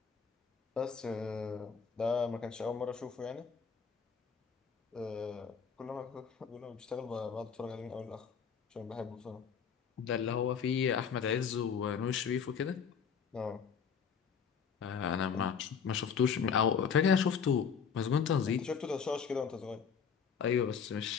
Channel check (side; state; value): right; quieter; 6.7 dB